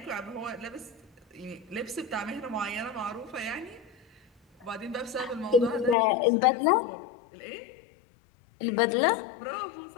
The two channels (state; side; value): drops out; right; at 6.0 s